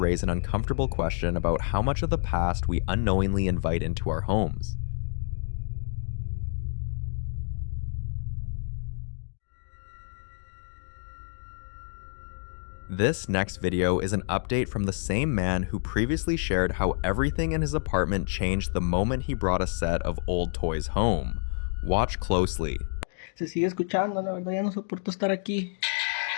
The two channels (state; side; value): silent; right; digital silence